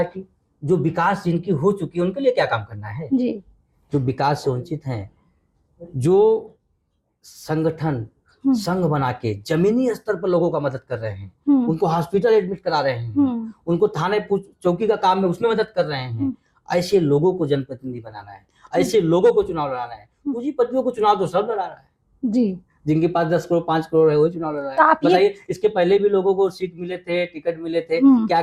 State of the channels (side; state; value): both; identical; correlation 1.00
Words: जो विकास जिनकी हो चुकी है उनके लिए क्या काम करना है जी। जो विकास से वंचित हैं, जो संगठन संघ बना के जमीनी स्तर पर लोगों का मदद कर रहे हैं, उनको हॉस्पिटल एडमिट करा रहे हैं, उनको थाने चौकी का काम है उसमें मदद कर रहे हैं, ऐसे लोगों को जनप्रतिनिधि बनाना है, ऐसे लोगों को चुनाव लड़ाना है। पूंजीपतियों को चुनाव तो सब लड़ा रहा है जी, जिनके पास 10 करोड़ 5 करोड़ है वही चुनाव लड़ रहा है। बताइए, इसके पहले भी लोगों को सीट मिले थे, टिकट मिले थे, क्या